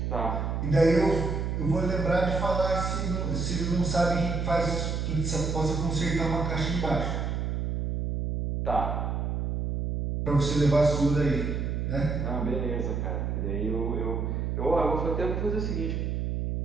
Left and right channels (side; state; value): right; noise; hum, 1 dB below the sound